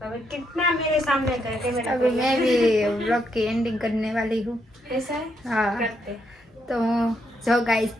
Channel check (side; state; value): both; normal; correlation 0.78